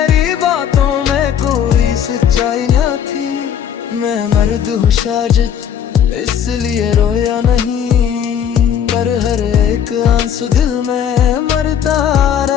बातों में कोई सच्चाई ना थी। मैं मर्द हूँ शायद इसलिए रोया नहीं, पर हर एक आंसू दिल में मरता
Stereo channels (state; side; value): quieter; right; 8.8 dB